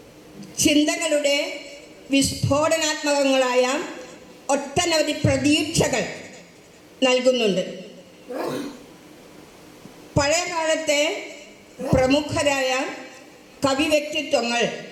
ചിന്തകളുടെ വിസ്ഫോടനാത്മകങ്ങളായ ഒട്ടനവധി പ്രതീക്ഷകൾ നൽകുന്നുണ്ട്. പഴയ കാലത്തെ പ്രമുഖരായ കവി വ്യക്തിത്വങ്ങൾ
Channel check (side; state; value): both; identical; correlation 1.00